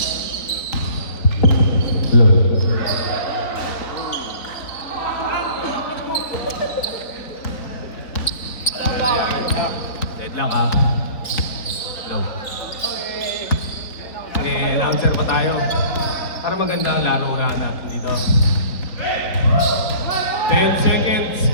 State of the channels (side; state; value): right; late; 3.9 ms